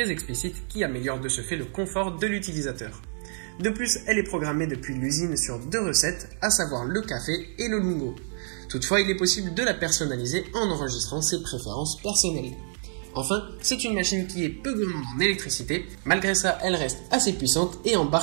explicite qui améliore de ce fait le confort de l'utilisateur. De plus, elle est programmée depuis l'usine sur deux recettes, à savoir le café et le lungo. Toutefois, il est possible de la personnaliser en enregistrant ses préférences personnelles. Enfin, c'est une machine qui est peu gourmande en électricité. Malgré ça, elle reste assez puissante et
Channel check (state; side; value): silent; left; digital silence